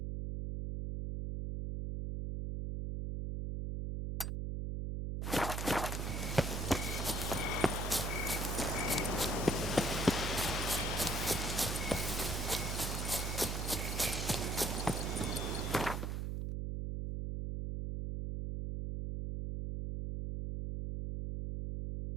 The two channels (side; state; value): right; noise; hum, 1 dB below the sound